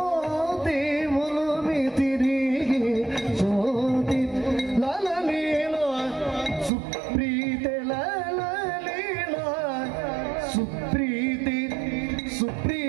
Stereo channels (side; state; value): left; drops out; at 6.7 s